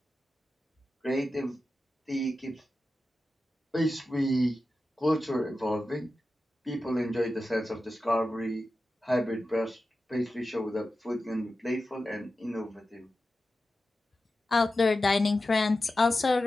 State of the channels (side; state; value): both; normal; correlation 0.92